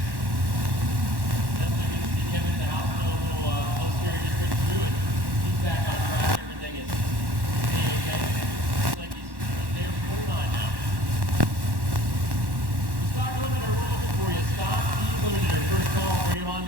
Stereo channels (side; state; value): left; late; 1.1 ms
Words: Definitely good to see Kevin in the house. No little post here, just went through it. He's back on track. Everything is A-okay. Looks like he's there for 49 now. Stock limiter, we're looking for you. Stock limiter, first call, bring him on